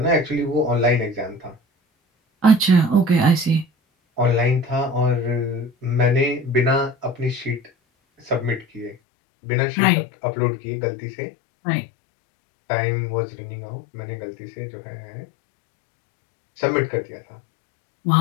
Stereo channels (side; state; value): right; drops out; at 9.0 s